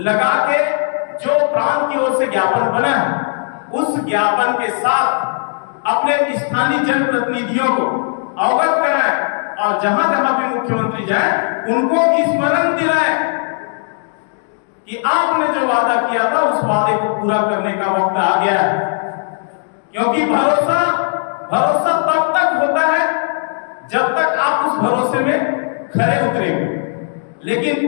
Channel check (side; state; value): right; silent; digital silence